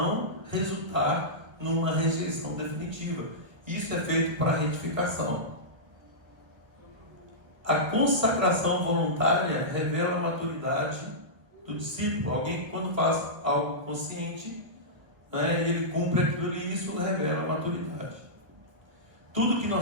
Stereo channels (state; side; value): late; left; 1.6 ms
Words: resultar numa rejeição definitiva. Isso é feito para retificação. A consagração voluntária revela a maturidade do discípulo. Alguém que, quando faz algo consciente, né, ele cumpre aquilo e isso revela a maturidade. Tudo que